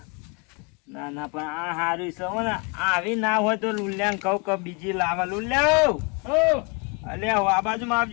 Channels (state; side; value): quieter; right; 32.0 dB